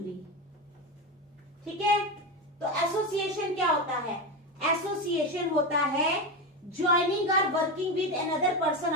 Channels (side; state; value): both; normal; correlation 0.17